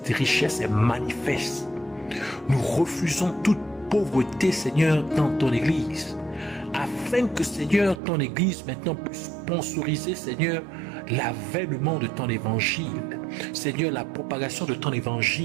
richesse est manifeste. Nous refusons toute pauvreté, Seigneur, dans ton Église, afin que, Seigneur, ton Église maintenant puisse sponsoriser, Seigneur, l'avènement de ton évangile. Seigneur, la propagation de ton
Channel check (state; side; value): drops out; left; at 8.0 s